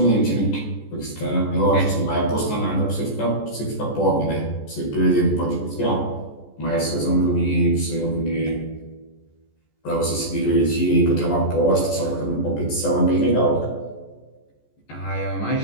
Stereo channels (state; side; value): late; right; 14 ms